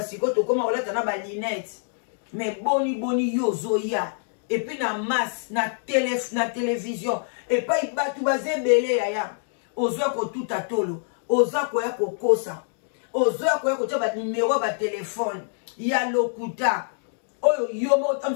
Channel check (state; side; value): silent; right; digital silence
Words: to koma olata na ba lunette mais boni yo zoya et puis na masse na télévision et pas batu bazebele yaya ozwa ko tuta tolo oza ko ya kokosa ozoya ko ya ko tia ba numéro ba téléphone ya lokuta oyo yomo